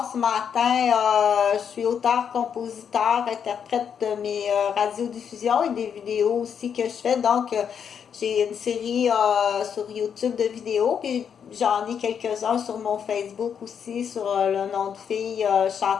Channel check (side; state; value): right; quieter; 7.6 dB